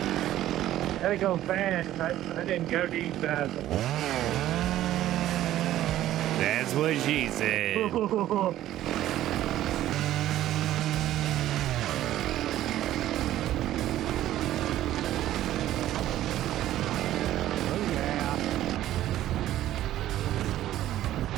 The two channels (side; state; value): left; quieter; 13.4 dB